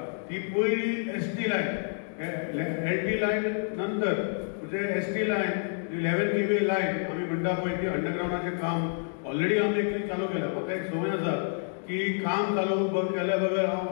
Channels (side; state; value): right; silent; 59 dB below the other